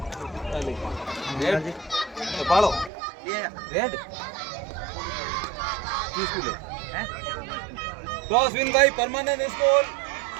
रेड पालो रेड किस को ले cross win by permanent school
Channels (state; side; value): drops out; left; at 2.9 s